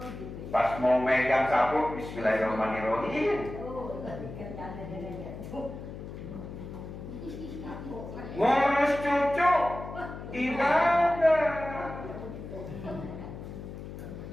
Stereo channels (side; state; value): left; noise; hum, 10 dB below the sound